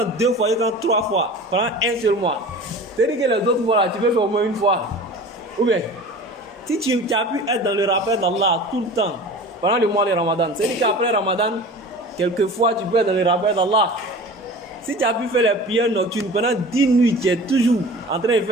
2 fois, jusqu'à 3 fois, pendant un seul mois, c'est-à-dire que les autres fois, là, tu peux faire au moins une fois. Ou bien, si tu as pu être dans le rappel d'Allah tout le temps, pendant le mois de Ramadan, c'est-à-dire qu'après Ramadan, quelquefois, tu peux être dans le rappel d'Allah. Si tu as pu faire les prières nocturnes pendant 10 nuits, tu es toujours en train de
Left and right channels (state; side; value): normal; both; correlation 0.38